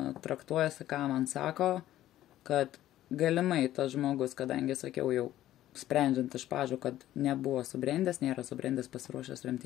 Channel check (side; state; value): right; quieter; 13.6 dB